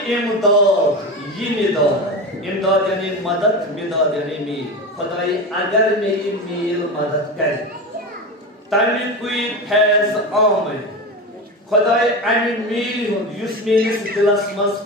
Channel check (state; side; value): normal; both; correlation 0.23